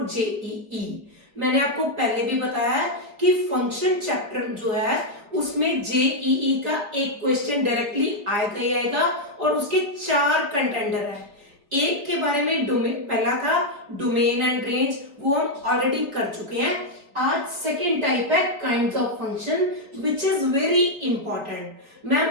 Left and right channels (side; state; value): left; late; 3.6 ms